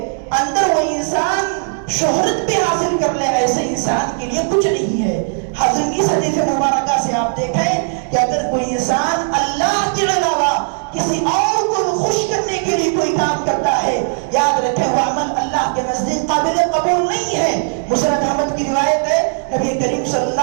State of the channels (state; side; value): silent; left; 64 dB below the other